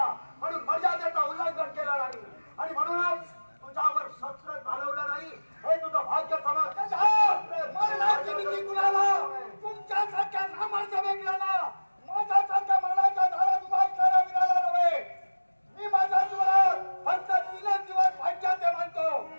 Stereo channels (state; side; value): inverted; both; correlation -1.00